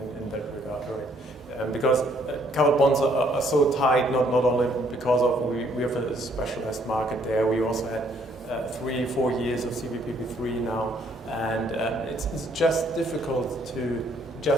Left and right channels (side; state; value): both; normal; correlation 0.65